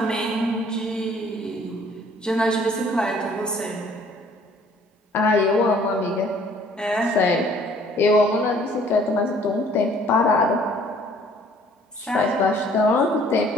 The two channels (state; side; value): normal; both; correlation 0.57